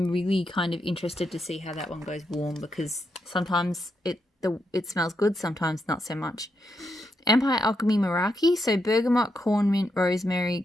really kind of interested to see how that one goes warm, because sometimes it smells good, sometimes not so much. Empire Alchemy Meraki. So bergamot, corn mint, rosemary,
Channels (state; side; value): normal; both; correlation 0.82